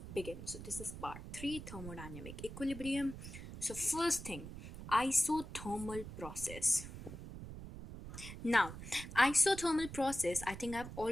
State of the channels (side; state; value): right; noise; rumble, 11 dB below the sound